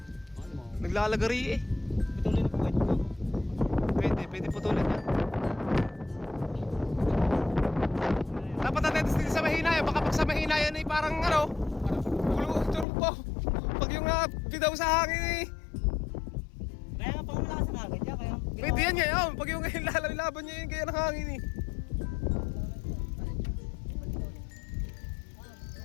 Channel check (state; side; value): drops out; right; at 12.9 s